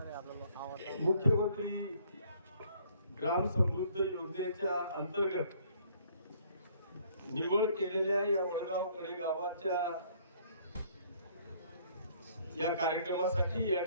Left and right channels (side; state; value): both; inverted; correlation -0.61